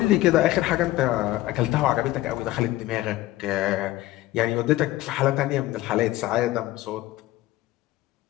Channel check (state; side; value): quieter; right; 16.5 dB